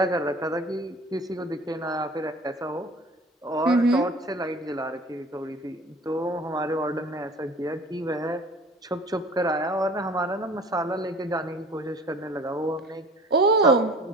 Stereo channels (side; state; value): both; normal; correlation 0.45